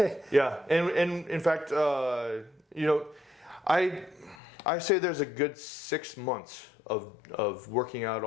Yeah. And in fact, I say there's a good 6 months of working out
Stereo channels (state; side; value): drops out; right; at 4.4 s